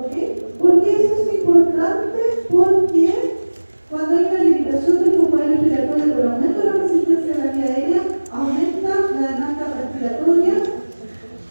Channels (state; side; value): inverted; both; correlation -1.00